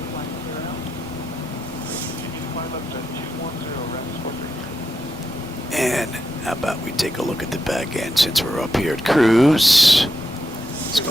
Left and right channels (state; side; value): normal; both; correlation 0.85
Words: And how about we take a look at the back end since we're up here at cruise. Let's